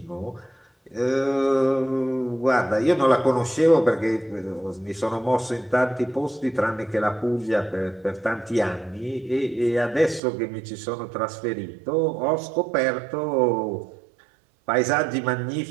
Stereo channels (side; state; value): left; drops out; at 10.2 s